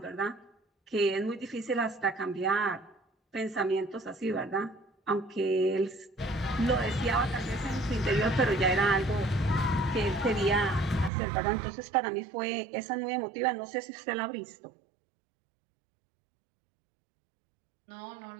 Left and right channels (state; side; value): drops out; left; at 11.1 s